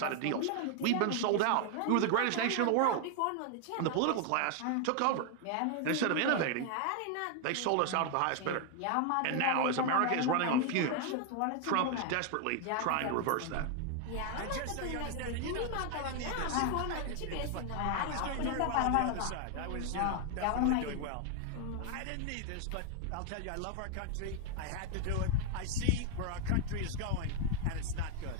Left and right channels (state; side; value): different; both; correlation 0.00